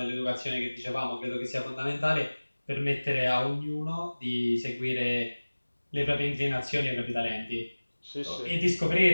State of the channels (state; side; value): inverted; both; correlation -1.00